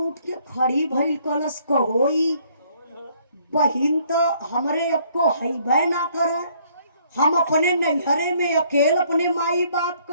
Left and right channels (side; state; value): both; inverted; correlation -0.64